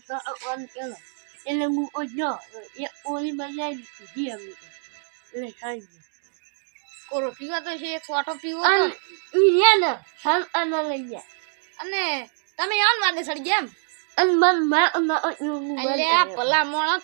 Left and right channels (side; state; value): left; silent; 62 dB below the other